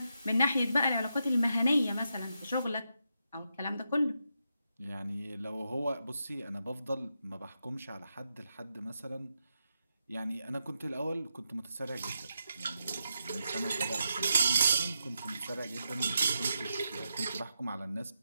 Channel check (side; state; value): both; inverted; correlation -0.85